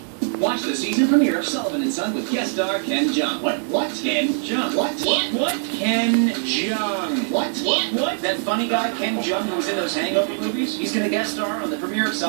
Watch the season premiere of Sullivan and Son with guest star Ken Jeong. What? Ken Jeong. What? Ken Jeong. What? That funny guy Ken Jeong who was in those Hangover movies? He's gonna guest star on the premiere of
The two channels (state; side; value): silent; left; digital silence